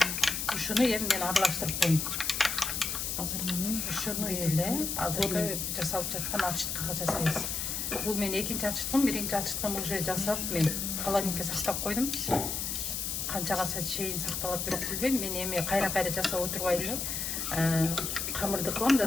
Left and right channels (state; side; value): noise; left; hiss, 2 dB below the sound